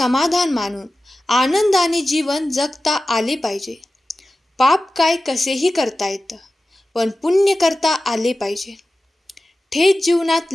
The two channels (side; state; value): both; normal; correlation 0.95